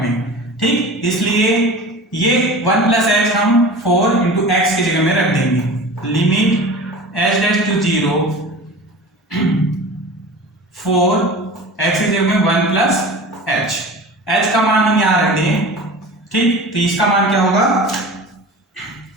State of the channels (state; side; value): normal; both; correlation 0.36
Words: में। ठीक, इसलिए ये 1 प्लस h हम 4 इंटू एक्स की जगह में रख देंगे, लिमिट h' टू 0 4 x की जगह में 1 प्लस h का मान हम यहां रख दें। ठीक, तो इसका मान क्या होगा